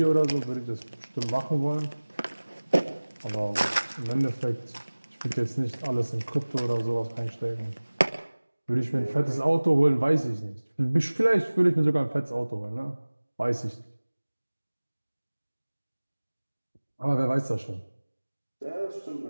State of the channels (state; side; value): inverted; both; correlation -1.00